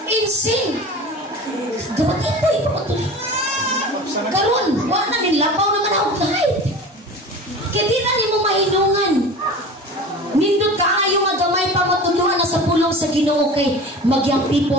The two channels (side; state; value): both; normal; correlation 0.36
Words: Insing. Dapat ito ipapatuloy. Karon, wala na nilapaw naman ako kahit. Kaya di na ni mo mahinungan. Nindot ka ayaw nga gamay pa matuluan na sa pulong sa Ginoo kay magyang